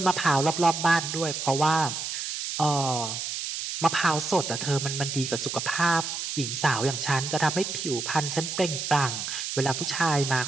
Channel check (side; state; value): right; noise; hiss, 4 dB below the sound